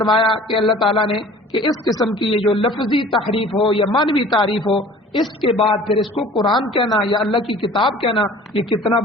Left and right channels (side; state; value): both; normal; correlation 0.47